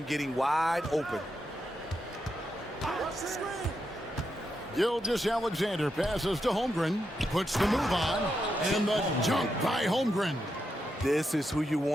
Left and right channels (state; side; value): normal; both; correlation 0.84